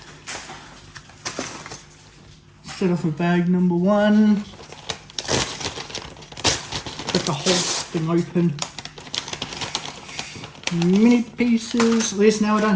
Start off with bag number 1. Got the whole thing open. Mini pieces. At least now I don't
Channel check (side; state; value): both; identical; correlation 1.00